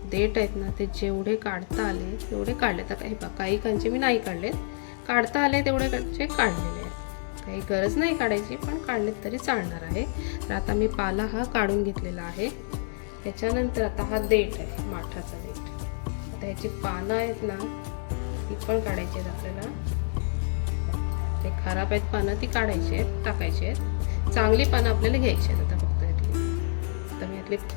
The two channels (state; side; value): silent; right; digital silence